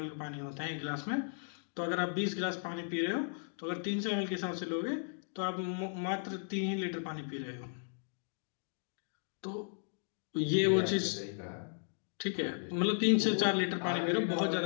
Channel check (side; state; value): right; silent; digital silence